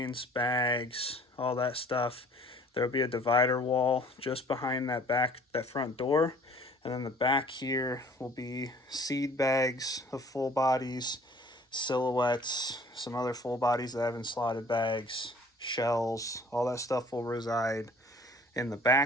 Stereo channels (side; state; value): both; normal; correlation 0.52